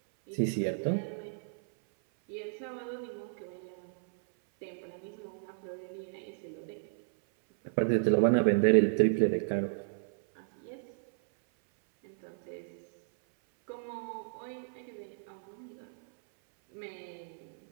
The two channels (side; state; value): left; silent; 56 dB below the other